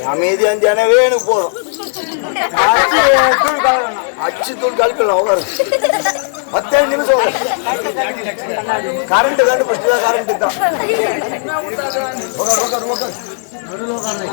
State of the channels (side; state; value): right; silent; 70 dB below the other